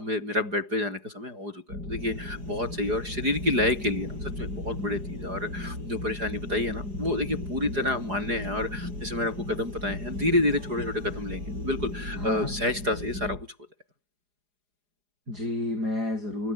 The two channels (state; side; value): late; left; 4.9 ms